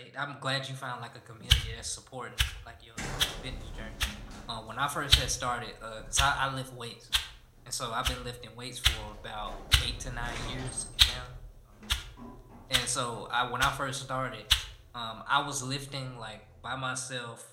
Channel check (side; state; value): both; identical; correlation 1.00